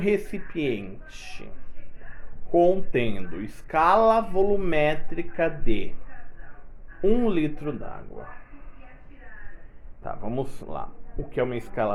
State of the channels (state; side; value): identical; both; correlation 1.00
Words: contendo escala volumétrica de 1 litro d'água. Tá, vamos lá. O que é uma